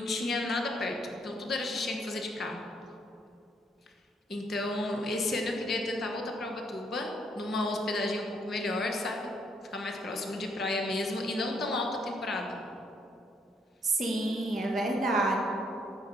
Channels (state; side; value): normal; both; correlation 0.71